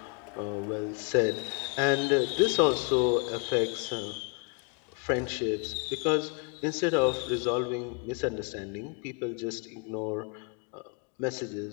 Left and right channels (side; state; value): right; quieter; 34.9 dB